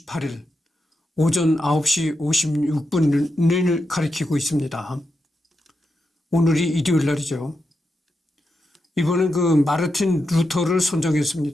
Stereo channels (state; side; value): normal; both; correlation 0.87